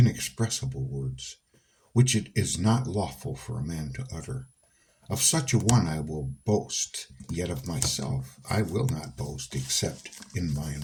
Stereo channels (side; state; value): both; identical; correlation 1.00